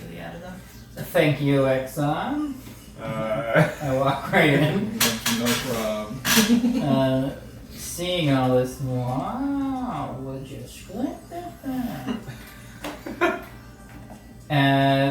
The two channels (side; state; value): both; identical; correlation 1.00